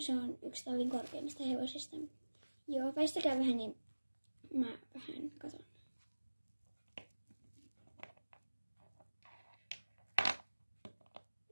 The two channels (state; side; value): inverted; both; correlation -1.00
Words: se on yksi tallin korkeimmista hevosista. Joo, väistäkää vähän, niin mä vähän katon.